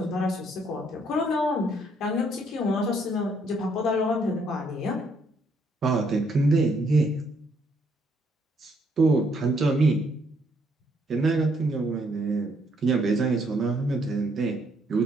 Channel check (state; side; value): normal; both; correlation 0.70